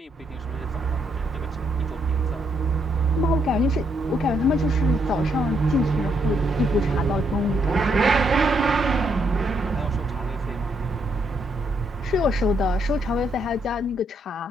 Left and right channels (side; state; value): both; normal; correlation 0.75